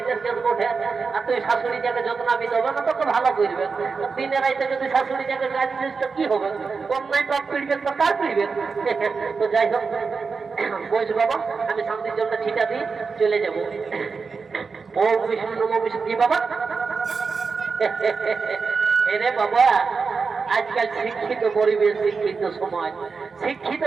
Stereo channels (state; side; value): quieter; left; 4.9 dB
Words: কেস বটে। আর তুই শাশুড়িটাকে যত্ন আমি দেবো না, তোকে ভালো করবে। দিনের রাইতে যদি শাশুড়িটাকে কাজ দিস তো কি হবে? অন্যায় পাপ পিড়বে তো কার পিড়বে? তো যাই হোক বলছি বাবা, আমি শান্তির জন্য ছিটা দিয়ে চলে যাবো। ওম বিষ্ণু নমো বিষ্ণু কি বাবা এরে বাবা আজকাল শিক্ষিত পরিবেশ শিক্ষিত সমাজ শিক্ষিত